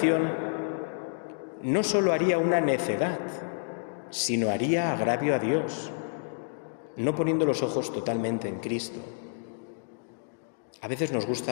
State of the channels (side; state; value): right; silent; digital silence